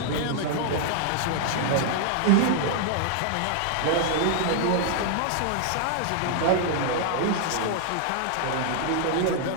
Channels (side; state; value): both; different; correlation 0.00